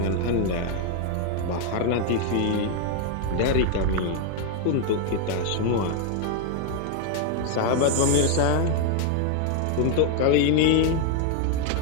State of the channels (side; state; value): both; different; correlation 0.00